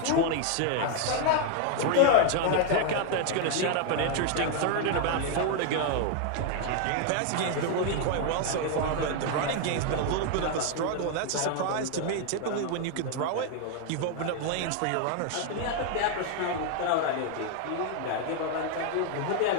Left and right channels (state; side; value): different; both; correlation 0.00